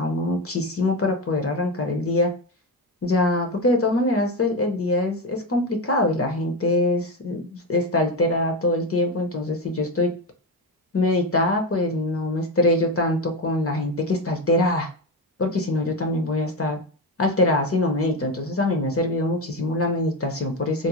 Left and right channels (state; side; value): normal; both; correlation 0.16